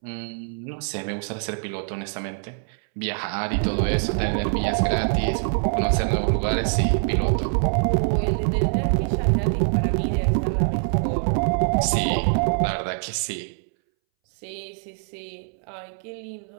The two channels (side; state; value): left; silent; 62 dB below the other